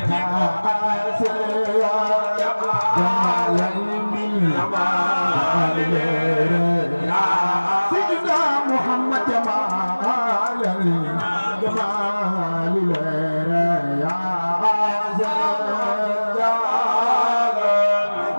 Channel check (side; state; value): both; inverted; correlation -1.00